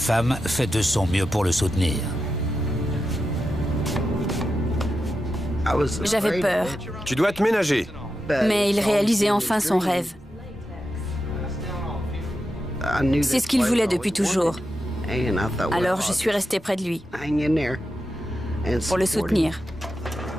fait de son mieux pour le soutenir. J'avais peur, Tu dois te ménager. mais il réalisait enfin son rêve. C'est ce qu'il voulait depuis toujours. Alors je suis restée près de lui, pour le soutenir.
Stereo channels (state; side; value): normal; both; correlation 0.89